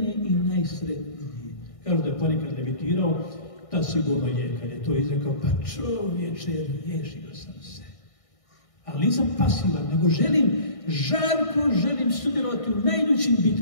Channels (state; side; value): late; right; 1.6 ms